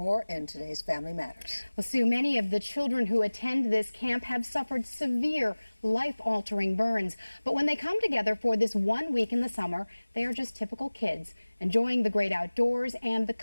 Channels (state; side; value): inverted; both; correlation -1.00